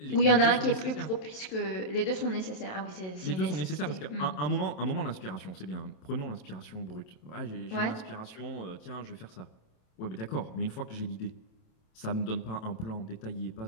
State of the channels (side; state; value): right; late; 27 ms